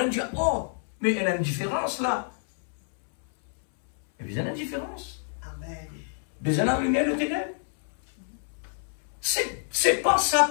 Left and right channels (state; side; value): silent; right; 60 dB below the other